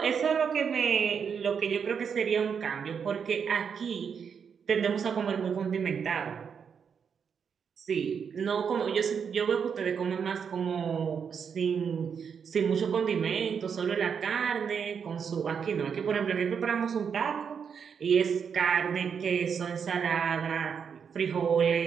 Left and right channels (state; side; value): quieter; left; 6.8 dB